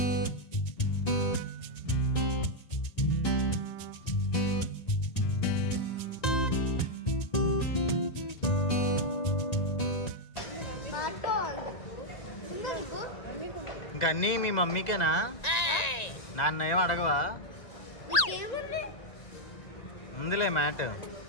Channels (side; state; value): right; late; 1.9 ms